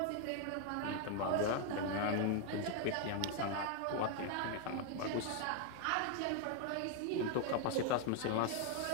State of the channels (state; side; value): different; both; correlation 0.01